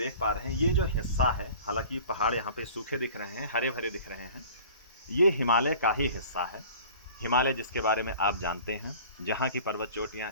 पा रहे हैं, ये जो हिस्सा है, हालांकि पहाड़ यहाँ पे सूखे दिख रहे हैं, हरे भरे दिख रहे हैं, ये हिमालय का ही हिस्सा है। हिमालय जिसके बारे में आप जानते हैं, जहाँ की पर्वत चोटियाँ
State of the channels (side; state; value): both; inverted; correlation -0.45